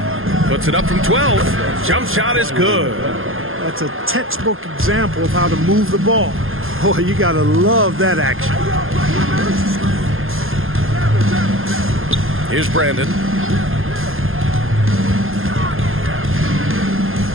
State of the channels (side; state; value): left; late; 0.60 ms